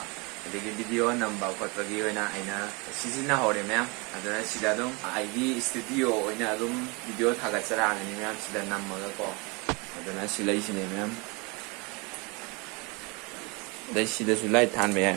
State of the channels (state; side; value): quieter; left; 28.8 dB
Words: ꯑꯗꯒꯤ ꯚꯤꯗꯤꯑꯣ ꯅꯝꯕ ꯈꯣꯠꯄꯒꯤ ꯑꯣꯏꯅ ꯑꯩꯅ ꯁꯤꯖꯤꯟꯅꯍꯧꯔꯦ ꯃꯌꯥꯝ ꯑꯗꯨꯅ ꯁꯤꯗ ꯑꯗꯨꯝ ꯑꯩꯒꯤ ꯏꯁꯇꯨꯗꯤꯑꯣ ꯑꯣꯏꯅ ꯑꯗꯨꯝ ꯚꯤꯗꯤꯑꯣ ꯊꯥꯒꯠꯆꯔꯛꯑꯒꯅꯤ ꯃꯌꯥꯝ ꯁꯤꯗ ꯅꯝꯃꯒꯀꯣ ꯑꯗꯨꯅ ꯁꯤ ꯂꯩꯁꯤꯅꯦ ꯃꯌꯥꯝ ꯑꯗꯩ ꯁꯤꯗꯁꯨ ꯂꯥꯏꯠ ꯊꯥꯟꯕ ꯌꯥꯏ